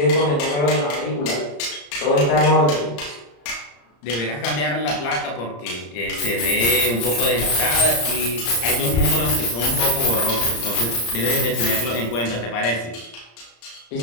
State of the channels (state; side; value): late; right; 34 ms